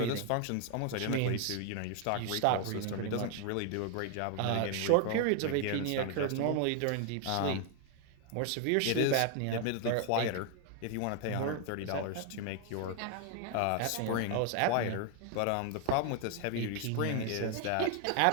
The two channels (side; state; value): both; different; correlation 0.01